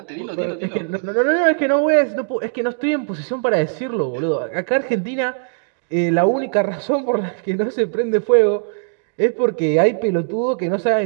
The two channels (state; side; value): silent; left; digital silence